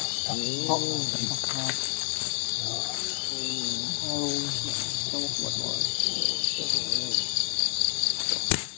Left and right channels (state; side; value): silent; right; digital silence